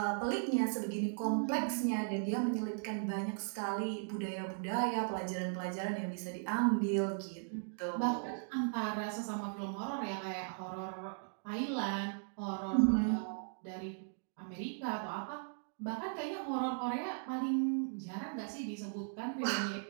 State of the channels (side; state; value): left; silent; digital silence